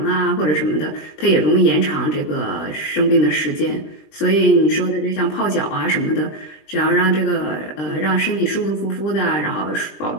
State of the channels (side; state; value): right; late; 20 ms